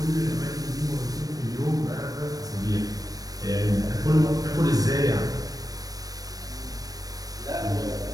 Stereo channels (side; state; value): left; late; 0.18 ms